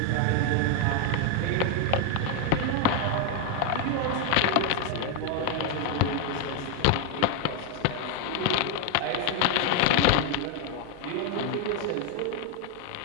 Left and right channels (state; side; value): different; both; correlation 0.01